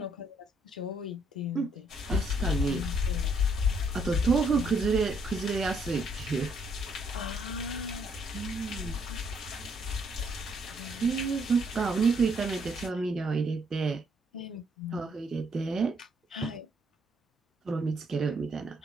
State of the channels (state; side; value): normal; both; correlation 0.70